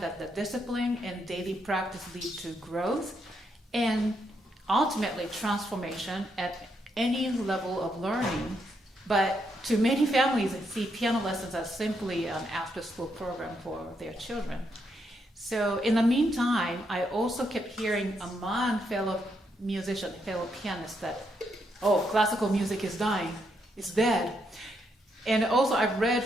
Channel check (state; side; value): normal; both; correlation 0.78